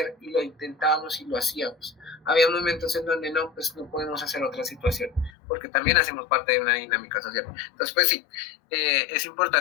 y lo intentábamos y lo hacíamos. Había momentos en donde no, pues no podemos hacer otra situación, porque también hacemos parte de una dinámica social. Entonces, pues sí, es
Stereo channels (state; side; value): drops out; right; at 5.3 s